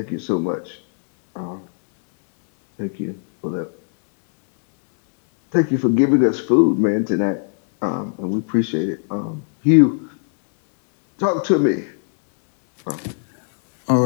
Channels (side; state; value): right; silent; digital silence